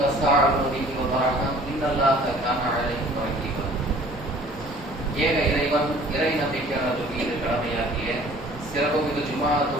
تساءلون به والأرحام إن الله كان عليكم رقيبا ஏக இறைவன் இறை நம்பிக்கையாளர்கள் மீது கடமையாகிய சிறப்புமிகு ஜுமா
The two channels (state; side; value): normal; both; correlation 0.51